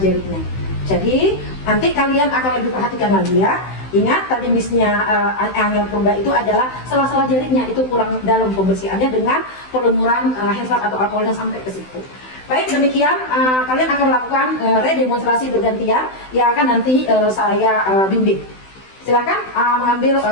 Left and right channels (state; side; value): late; right; 16 ms